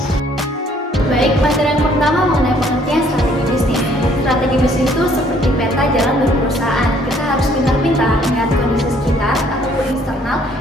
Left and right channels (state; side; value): normal; both; correlation 0.62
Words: Baik, materi yang pertama mengenai pengertian strategi bisnis. Strategi bisnis itu seperti peta jalan berperusahaan. Kita harus pintar-pintar melihat kondisi sekitar ataupun eksternal